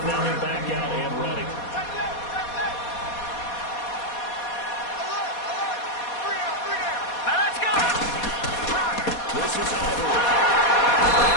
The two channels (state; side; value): late; right; 4.2 ms